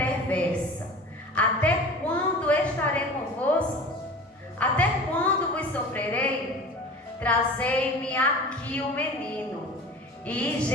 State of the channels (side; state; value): both; normal; correlation 0.38